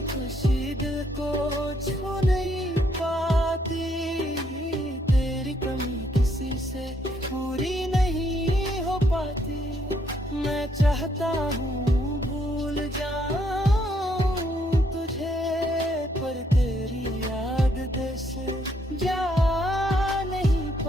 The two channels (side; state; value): both; normal; correlation 0.72